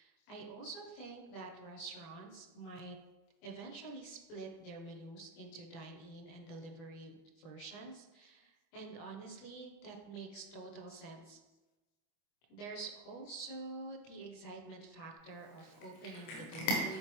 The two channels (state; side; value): late; right; 24 ms